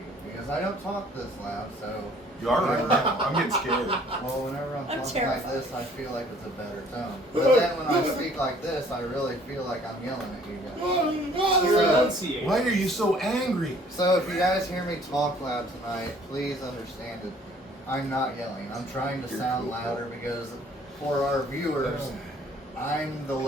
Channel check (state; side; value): normal; both; correlation 0.57